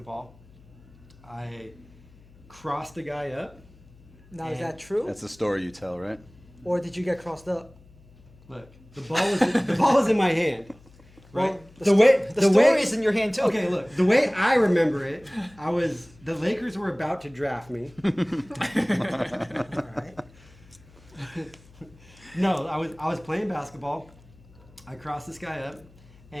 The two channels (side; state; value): left; noise; hum, 25 dB below the sound